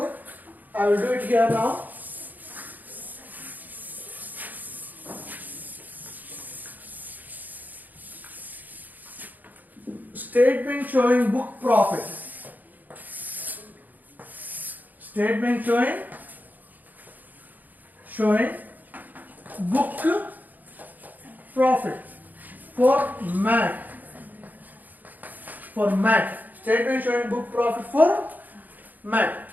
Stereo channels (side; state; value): left; late; 0.083 ms